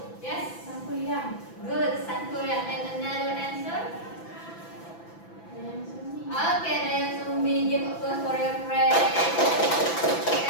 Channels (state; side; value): late; right; 6.0 ms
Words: Yes. Sangkuriang. Good, Sangkuriang. And another answer? Dayang Sumbi. Okay, Dayang Sumbi. Give applause for your friend.